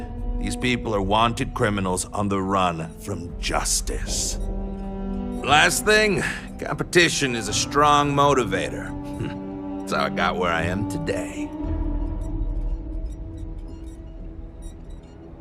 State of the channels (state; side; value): identical; both; correlation 1.00